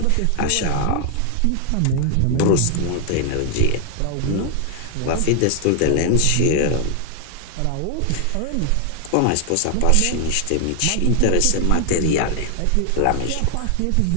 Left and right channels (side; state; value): both; different; correlation 0.00